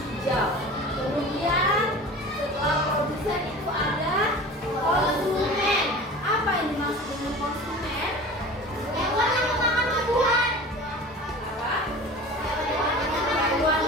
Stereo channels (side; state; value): both; normal; correlation 0.37